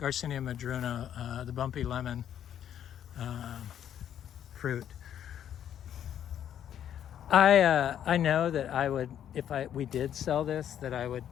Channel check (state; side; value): quieter; right; 10.0 dB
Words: madrono, the bumpy lemon fruit. I know that I would, if we did sell this, that I would